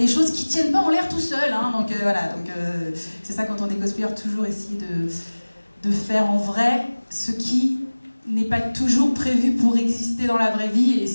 choses qui tiennent pas en l'air tout seul, hein, donc voilà, donc c'est ça quand on est cosplayer, toujours essayer de faire en vrai ce qui n'est pas toujours prévu pour exister dans la vraie vie, et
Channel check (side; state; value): both; inverted; correlation -1.00